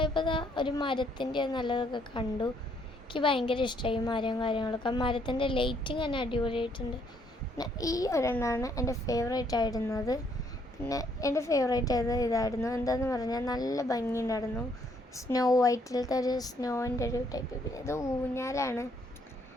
ഒരു മരത്തിൻ്റെ നല്ലതൊക്കെ കണ്ടു. എനിക്ക് ഭയങ്കര ഇഷ്ടമായി മരവും കാര്യങ്ങളൊക്കെ. മരത്തിൻ്റെ ലൈറ്റിങ് തന്നെ അടിപൊളിയായിട്ടുണ്ട്. പിന്നെ ഈ ഒരെണ്ണമാണ് എൻ്റെ ഫേവറേറ്റ് ആയിരുന്നത്. പിന്നെ എൻ്റെ ഫേവറേറ്റ് ഇതായിരുന്നു. എന്താണെന്ന് പറഞ്ഞാൽ നല്ല ഭംഗിയുണ്ടായിരുന്നു. സ്നോ വൈറ്റിലത്തെ ഒരു സ്നോൻ്റെ ഒരു ടൈപ്പ്. പിന്നെ ഇത് ഊഞ്ഞാലാണ്.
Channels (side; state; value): both; normal; correlation 0.69